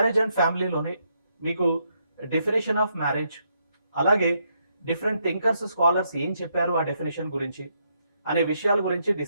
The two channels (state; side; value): inverted; both; correlation -0.77